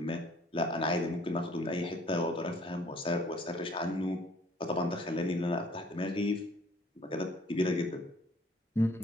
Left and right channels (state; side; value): normal; both; correlation 0.57